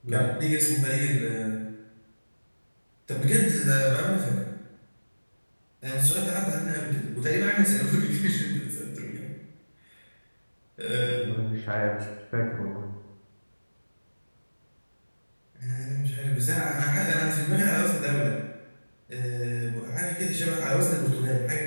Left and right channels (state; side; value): inverted; both; correlation -1.00